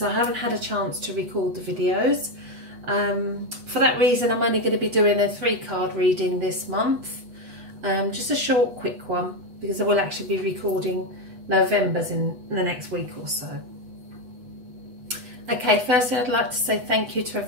I haven't had a chance to record the videos. For that reason, I'm only going to be doing a 3-card reading this month. Just a short, quick one, because I will actually be recording November's in the next week or so. Okay, firstly I'd like to say thank you to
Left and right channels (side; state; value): left; late; 8.1 ms